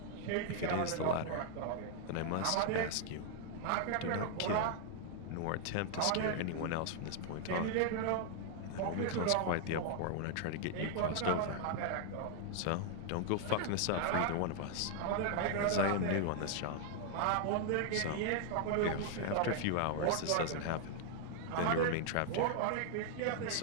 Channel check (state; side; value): different; both; correlation 0.00